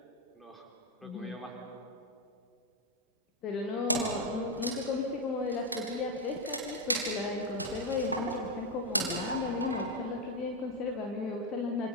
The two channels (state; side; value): normal; both; correlation 0.05